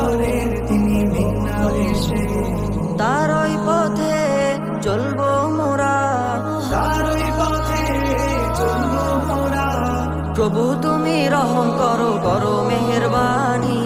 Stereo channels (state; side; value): identical; both; correlation 1.00